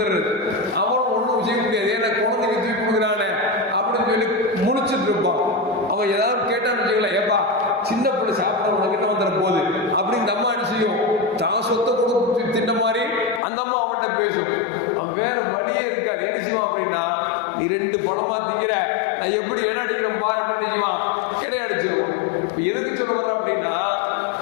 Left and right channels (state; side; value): drops out; right; at 13.4 s